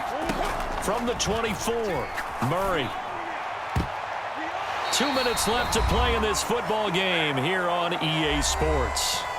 From the 24, Murray. 2 minutes left to play in this football game here on EA Sports.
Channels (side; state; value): both; identical; correlation 1.00